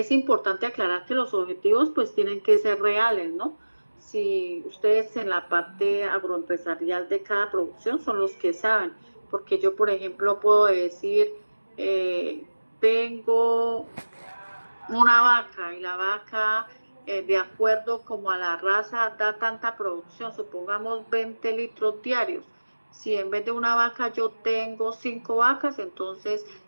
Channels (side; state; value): both; inverted; correlation -1.00